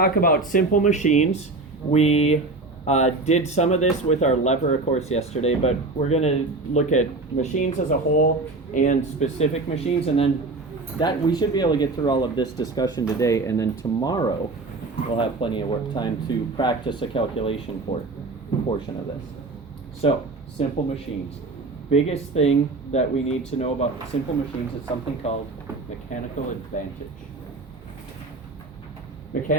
about simple machines. We did some of this with our lever course yesterday, but we're going to look at machines as a whole and specific machines, and then that we should be able to get through all of this discussion today, and then tomorrow we'll have plenty of work time to practice a calculation portion of this. So, simple machines. Biggest thing that we need to know about simple machines is something called mechanical advantage.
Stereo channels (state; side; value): quieter; left; 3.3 dB